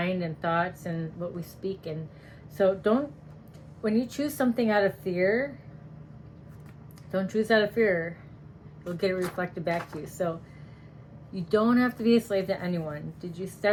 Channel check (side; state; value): both; identical; correlation 1.00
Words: and thoughts and what we speak. And so when you choose something out of fear, don't choose out of fear. You'll get it reflected back to you. So you don't have to be a slave to anyone. Did you